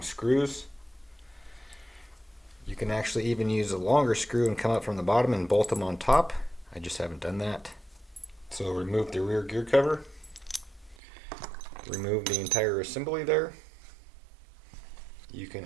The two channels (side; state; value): left; drops out; at 11.0 s